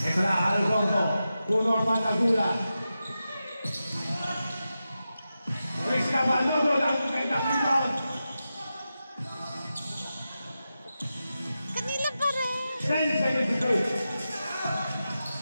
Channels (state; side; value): inverted; both; correlation -0.91